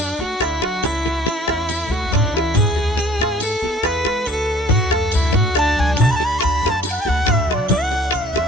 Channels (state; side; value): normal; both; correlation 0.53